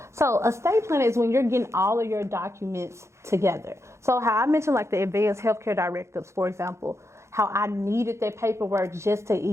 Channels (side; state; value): left; late; 0.14 ms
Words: So estate planning is when you're getting all of your documents together. So how I mentioned like the advanced healthcare directives, for example, how I needed that paperwork just to